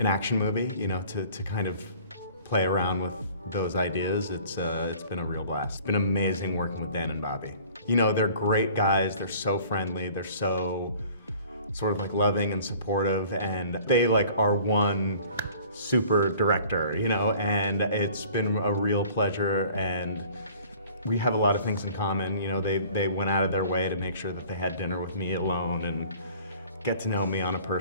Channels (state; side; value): inverted; both; correlation -0.50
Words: action movie, you know, to kind of play around with those ideas. It's been a real blast. It's been amazing working with Dan and Bobby. You know, they're great guys, they're so friendly, they're so sort of like loving and supportive, and they like are one super director, you know, and it's been a real pleasure, and we have a lot of things in common. You know, they went out of their way to make sure that they had dinner with me alone and get to know me on a